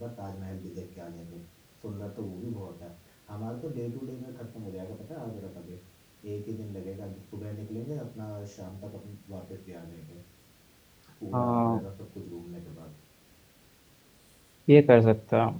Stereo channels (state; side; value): identical; both; correlation 1.00